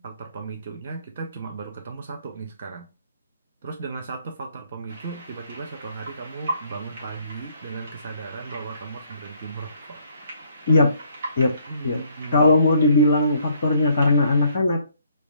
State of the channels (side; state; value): both; inverted; correlation -0.66